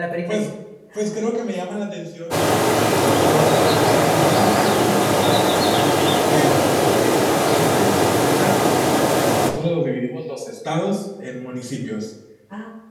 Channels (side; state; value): both; identical; correlation 1.00